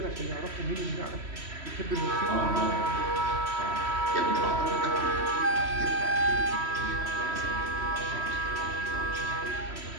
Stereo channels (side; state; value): left; late; 3.1 ms